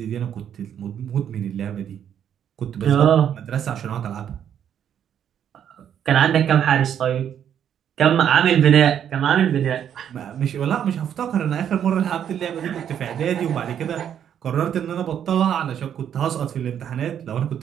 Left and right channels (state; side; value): quieter; left; 9.2 dB